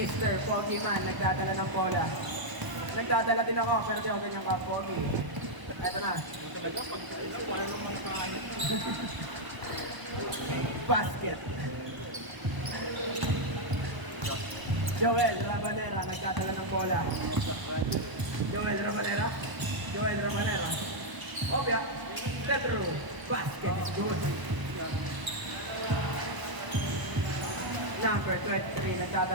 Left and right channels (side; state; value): left; late; 1.0 ms